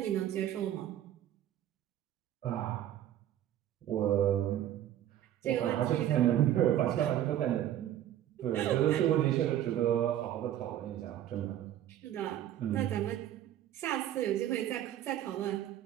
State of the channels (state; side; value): quieter; left; 11.8 dB